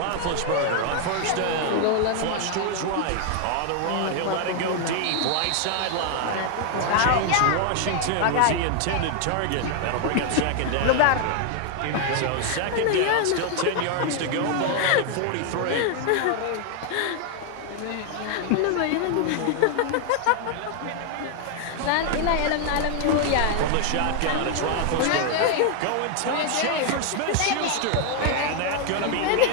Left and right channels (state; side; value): different; both; correlation 0.00